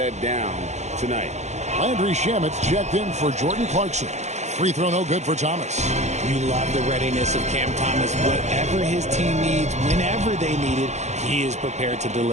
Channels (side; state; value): left; late; 0.33 ms